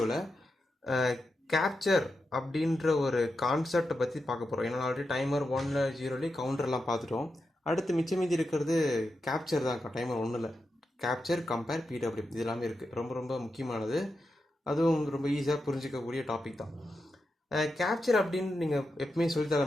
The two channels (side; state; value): both; normal; correlation 0.88